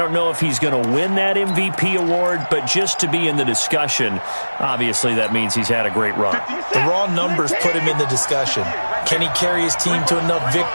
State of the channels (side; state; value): both; inverted; correlation -1.00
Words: know if he's going to win that MVP award, but just to be in the discussion, obviously that means he's had a great run. The raw numbers put him in the discussion. Can he carry his team to enough